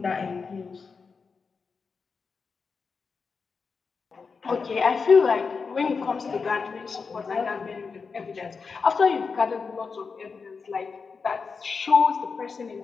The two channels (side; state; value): right; quieter; 5.1 dB